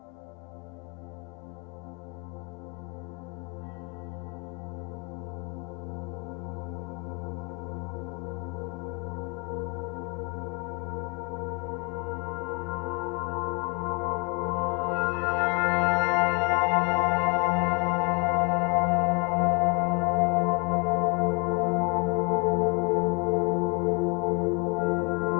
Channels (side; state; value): right; quieter; 31.3 dB